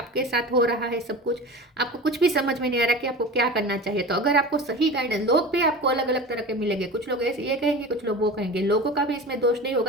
साथ हो रहा है सब कुछ, आपको कुछ भी समझ में नहीं आ रहा कि आपको क्या करना चाहिए। तो अगर आपको सही गाइडेंस, लोग भी आपको अलग अलग तरह के मिलेंगे, कुछ लोग ऐसे ये कहेंगे, कुछ लोग वो कहेंगे, लोगों का भी इसमें दोष नहीं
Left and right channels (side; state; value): both; normal; correlation 0.33